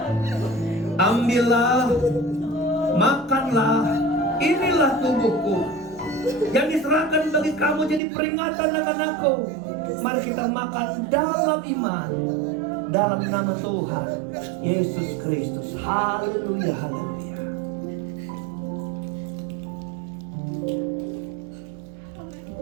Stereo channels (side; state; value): left; drops out; at 8.0 s